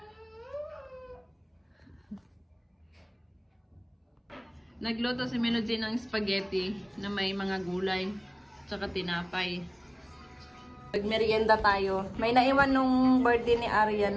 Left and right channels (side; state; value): both; identical; correlation 1.00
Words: Nagluto si Minoji ng spaghetti na may mga gulay tsaka tinapay. Nagmerienda tayo. May naiwan nung birthday ni Arya